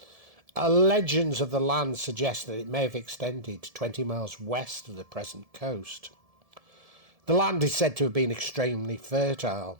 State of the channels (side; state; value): left; late; 1.7 ms